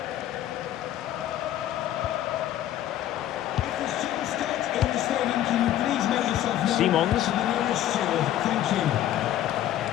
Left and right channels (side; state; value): right; quieter; 12.4 dB